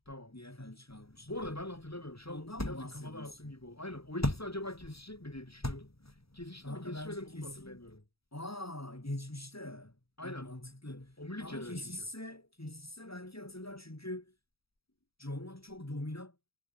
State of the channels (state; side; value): late; right; 0.77 ms